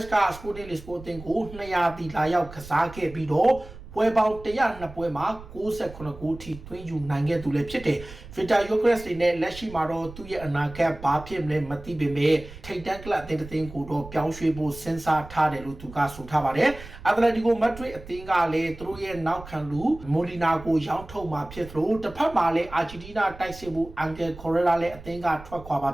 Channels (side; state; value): right; noise; rumble, 16 dB below the sound